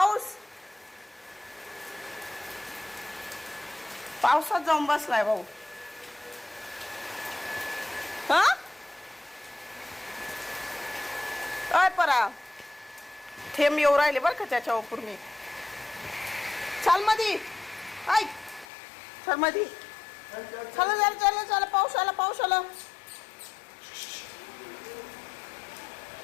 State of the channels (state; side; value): drops out; right; at 18.7 s